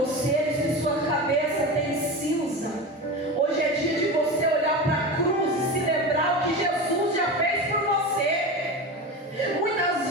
se sua cabeça tem cinza, hoje é dia de você olhar para a cruz e se lembrar o que Jesus já fez por você.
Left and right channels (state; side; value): normal; both; correlation 0.25